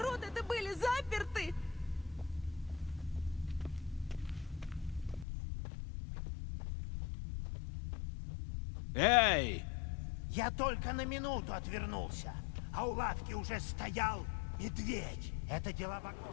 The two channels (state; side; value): drops out; right; at 5.2 s